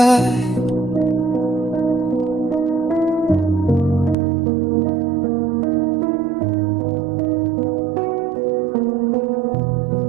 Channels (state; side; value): drops out; left; at 4.2 s